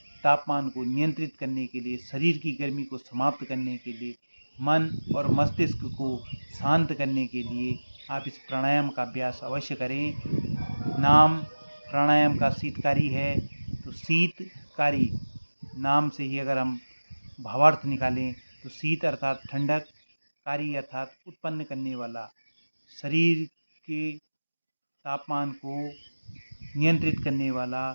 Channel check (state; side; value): inverted; both; correlation -1.00